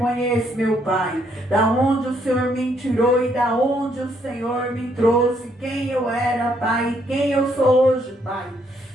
meu Pai, da onde o Senhor me tirou e da onde o Senhor me trouxe, quem eu era, Pai, e quem eu sou hoje, Pai.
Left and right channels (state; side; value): normal; both; correlation 0.71